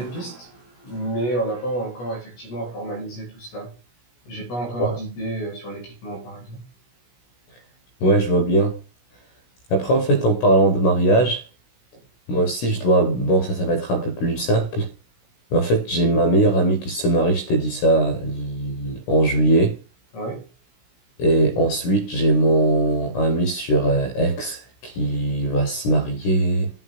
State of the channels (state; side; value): late; right; 16 ms